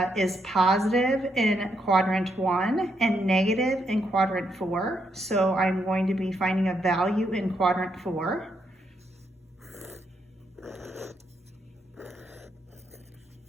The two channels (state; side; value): normal; both; correlation 0.78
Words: is positive in quadrant 1 and negative in quadrant 4. So I'm going to be finding a value in quadrant 4.